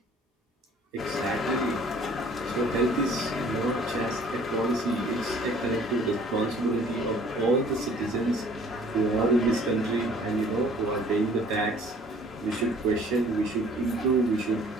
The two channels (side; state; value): both; normal; correlation 0.54